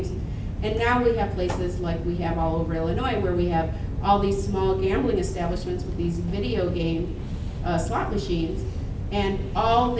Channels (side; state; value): both; identical; correlation 1.00